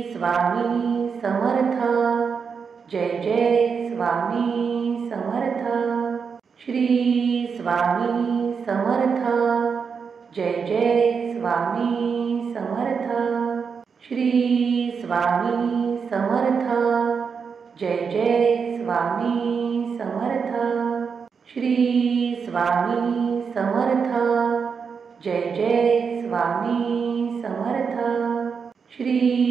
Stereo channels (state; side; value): quieter; left; 5.9 dB